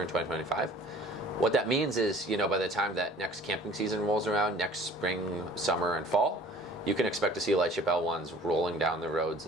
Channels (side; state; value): both; normal; correlation 0.50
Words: in 2025. What that means is, by the time that next camping season rolls around, next spring, summer, and fall, you can expect to see Lightship L1s rolling down the roads